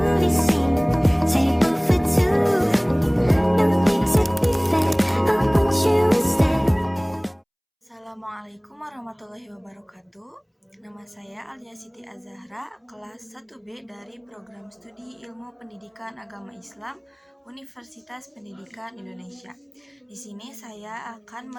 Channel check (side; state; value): both; identical; correlation 1.00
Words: scene, table for two. No need to be fair, I want you instead. Assalamualaikum warahmatullahi wabarakatuh. Nama saya Alia Siti Azahra, kelas 1B dari Program Studi Ilmu Pendidikan Agama Islam Universitas Pendidikan Indonesia. Di sini saya akan